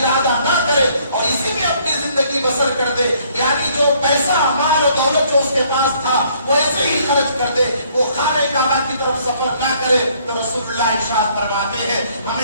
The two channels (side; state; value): both; inverted; correlation -0.64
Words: نہ کرے اور اسی میں اپنی زندگی بسر کر دے، یعنی جو پیسہ، مال و دولت جو اس کے پاس تھا وہ ایسے ہی خرچ کر دے، وہ خانہ کعبہ کی طرف سفر نہ کرے، تو رسول اللہ ارشاد فرماتے ہیں